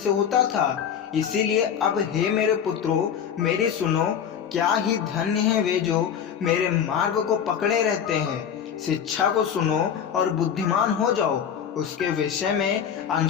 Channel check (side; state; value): right; quieter; 8.2 dB